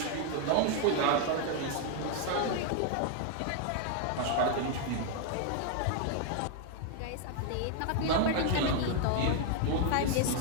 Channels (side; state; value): both; different; correlation 0.00